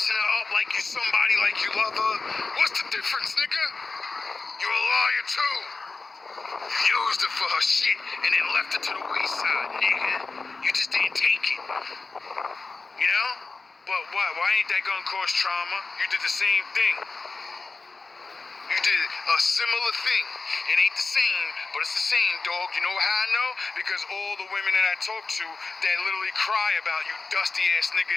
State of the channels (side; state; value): right; quieter; 3.9 dB